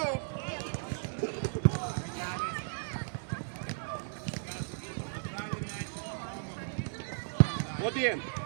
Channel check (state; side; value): silent; left; digital silence